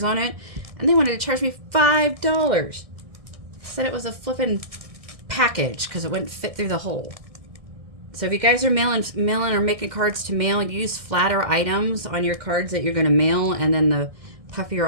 on it, and they wanted to charge me $5. Said it was a flippin' package because it wouldn't fit through the hole. So if you guys are mailing or making cards to mail, use flatter items on your cards that you're going to mail, and then the puffier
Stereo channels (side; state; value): left; late; 2.1 ms